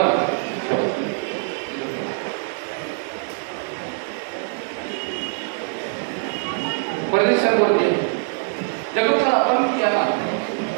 परदेशावरती जगत आपण याला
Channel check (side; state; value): left; silent; digital silence